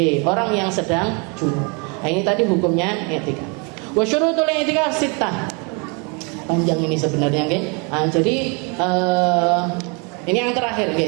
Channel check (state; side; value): quieter; left; 32.9 dB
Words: Orang yang sedang junub. Nah, ini tadi hukumnya i'tikaf. Wa syurutul i'tikaf sittah. Panjang ini sebenarnya, jadi ini yang terakhir,